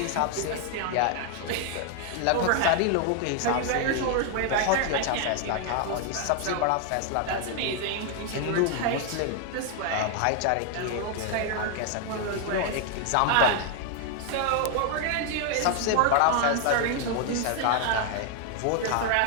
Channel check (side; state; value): both; different; correlation 0.00